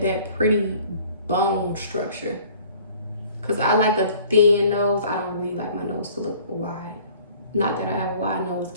pretty bone structure. Because I like a thin nose. I don't really like my nose to look wide. Not that I have a wide nose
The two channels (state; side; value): inverted; both; correlation -0.52